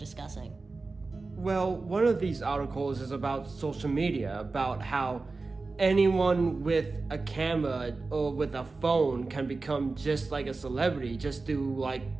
Well, one of these articles is about social media, about how anyone with a camera or with a phone can become just like a celebrity just through like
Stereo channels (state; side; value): quieter; left; 3.8 dB